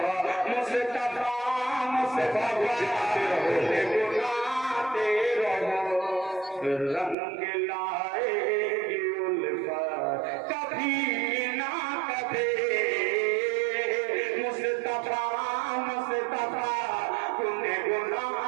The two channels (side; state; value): left; drops out; at 7.2 s